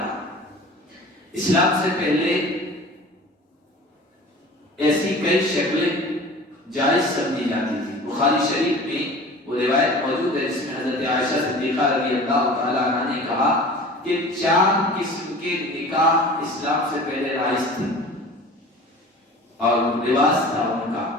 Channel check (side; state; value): both; normal; correlation 0.41